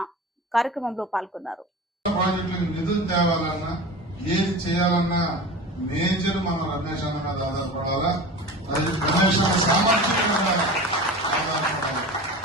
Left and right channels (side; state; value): both; normal; correlation 0.33